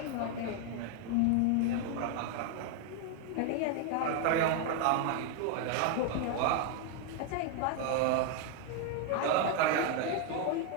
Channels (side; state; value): both; different; correlation 0.01